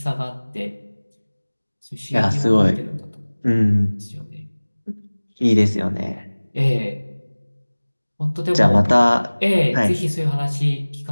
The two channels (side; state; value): both; inverted; correlation -1.00